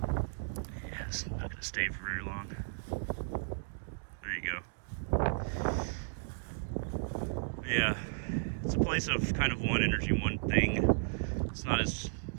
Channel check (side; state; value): left; silent; 55 dB below the other